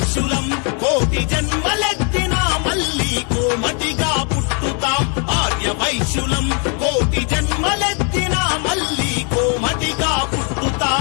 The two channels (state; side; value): quieter; right; 37.8 dB